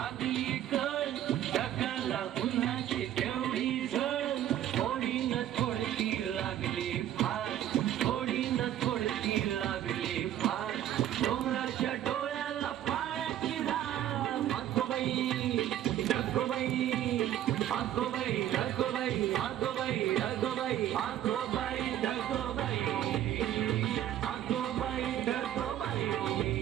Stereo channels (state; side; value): quieter; left; 11.7 dB